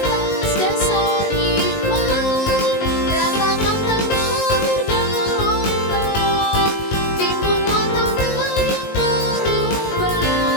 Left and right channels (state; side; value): late; right; 19 ms